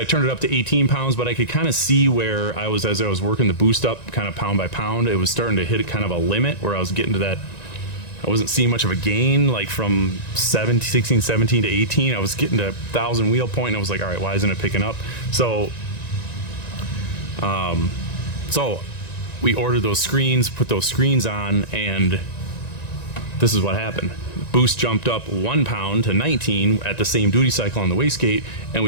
turned it up to 18 pounds, but I could kind of see where I was, as I was working the boost up kind of pound by pound, it was starting to hit kind of a limit where I was getting to that, I wasn't seeing much of a gain, like from 16, 17 to 18. I was getting to 1,000 wheel point, and I was like, all right, why isn't it picking up? So we ordered those screens, put those screens on, and this is what happened. Boost jumped up 1 pound to 19 at the same duty cycle on the wastegate, and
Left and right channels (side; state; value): right; late; 1.9 ms